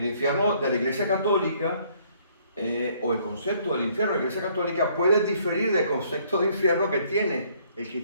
infierno de la Iglesia Católica, o el concepto del infierno de la Iglesia Católica, puede diferir del concepto de infierno que tiene el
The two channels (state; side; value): inverted; both; correlation -0.63